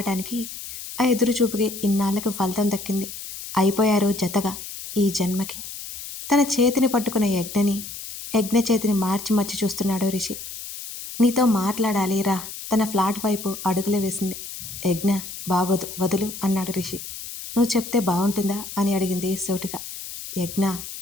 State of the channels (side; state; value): left; noise; hiss, 10 dB below the sound